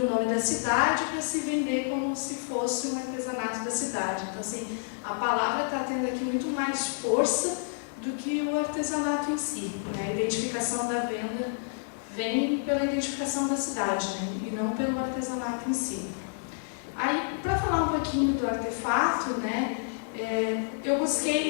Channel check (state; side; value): silent; right; digital silence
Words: nome da cidade para se vender como se fosse um artesanato da cidade. Então, assim, a palavra está tendo aqui muito mais força do que o artesanato em si, né? A identificação da venda vem pela identificação da cidade, né? E não pelo artesanato em si. Aí, para falar um pouquinho do artefato, né? Eu